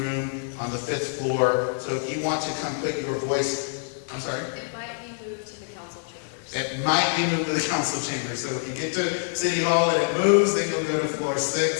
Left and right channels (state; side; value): silent; right; 61 dB below the other